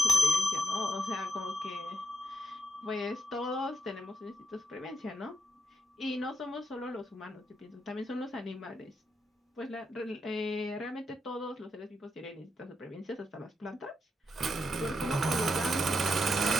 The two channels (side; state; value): both; normal; correlation 0.81